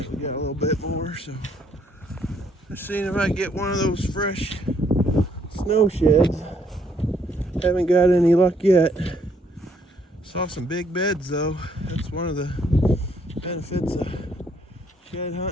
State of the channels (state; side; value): normal; both; correlation 0.68